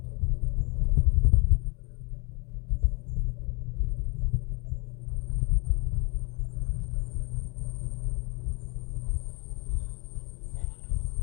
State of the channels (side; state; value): right; quieter; 31.3 dB